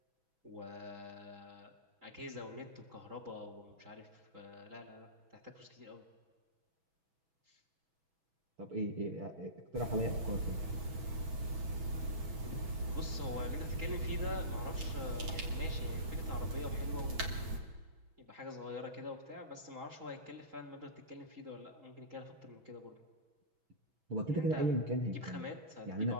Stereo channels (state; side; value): late; left; 6.1 ms